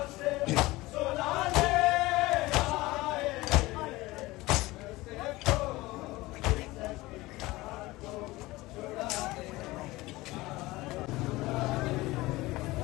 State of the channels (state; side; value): quieter; right; 19.8 dB